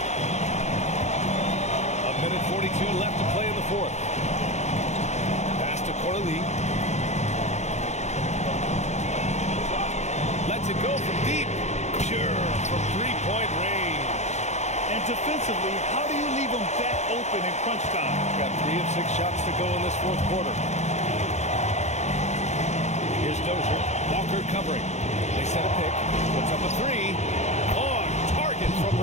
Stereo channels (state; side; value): late; right; 0.33 ms